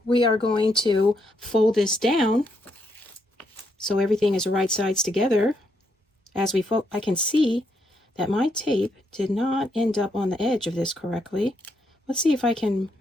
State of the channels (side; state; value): both; normal; correlation 0.77